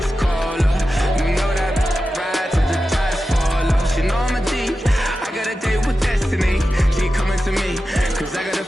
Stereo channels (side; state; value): both; normal; correlation 0.92